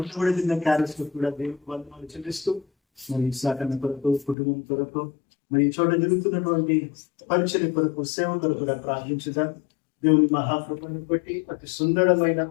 కూడా తిన్న క్యారెల్స్ కూడా దేవునికి వందనాలు చెల్లిస్తూ మరి సాకన్న కొరకు కుటుంబం కొరకు మరి ఈ చోట జరుగుతున్నటువంటి పరిచర్య కొరకు సేవ కొరకు కూడా ప్రార్థించుదాం. దేవుని మహాకృపను బట్టి అతి సుందరమైన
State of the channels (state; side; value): drops out; right; at 4.4 s